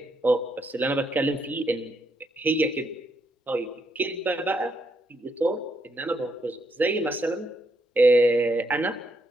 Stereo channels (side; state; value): both; normal; correlation 0.77